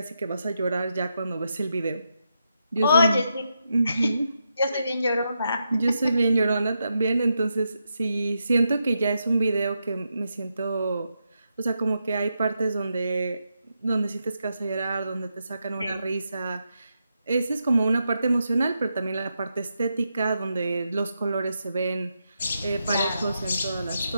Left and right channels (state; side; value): inverted; both; correlation -0.84